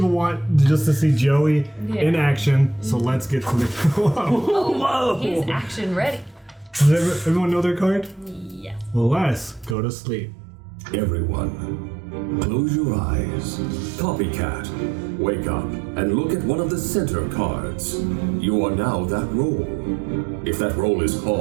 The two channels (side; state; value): left; drops out; at 9.8 s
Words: want just to see Joey in action, so let's get to the. Whoa. He's action ready. Does everyone know their card? Yes. Well, let's go to sleep. Everyone, close your eyes. Copycat, wake up and look at one of the center cards. You are now that role. If that role is